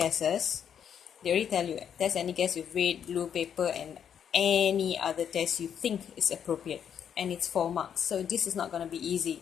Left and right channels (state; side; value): quieter; right; 8.4 dB